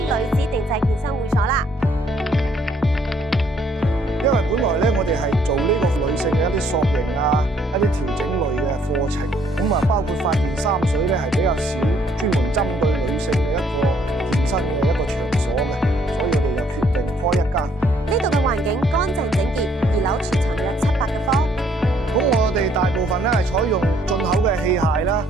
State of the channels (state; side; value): normal; both; correlation 0.66